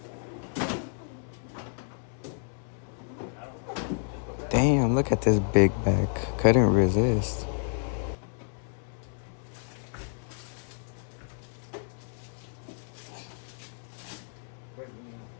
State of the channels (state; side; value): silent; right; digital silence